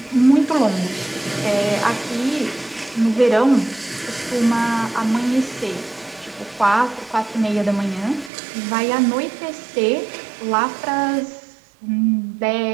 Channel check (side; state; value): left; drops out; at 8.3 s